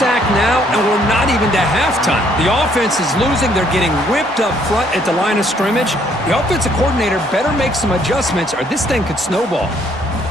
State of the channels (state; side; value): normal; both; correlation 0.66